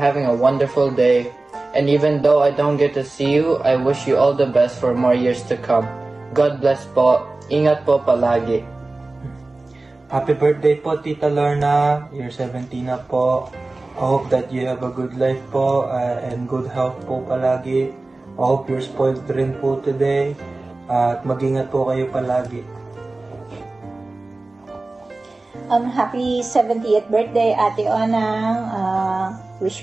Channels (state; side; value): quieter; left; 3.1 dB